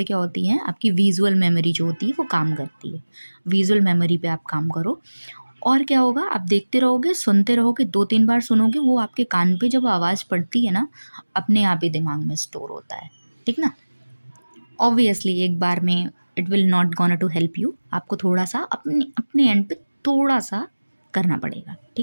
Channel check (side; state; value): both; inverted; correlation -1.00